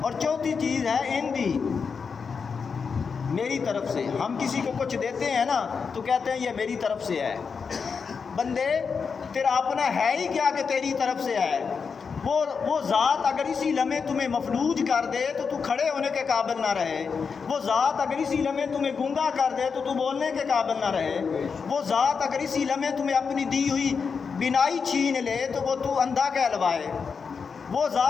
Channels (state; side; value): quieter; right; 5.7 dB